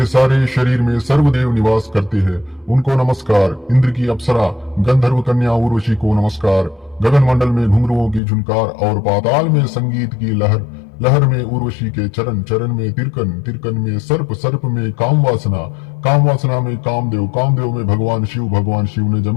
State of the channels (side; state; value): right; drops out; at 8.2 s